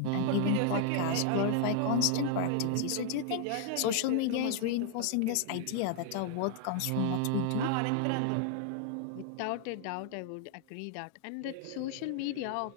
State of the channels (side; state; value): both; different; correlation 0.00